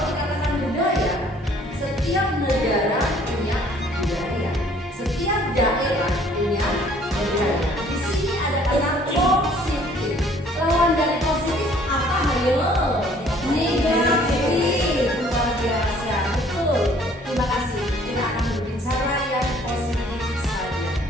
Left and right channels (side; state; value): both; normal; correlation 0.58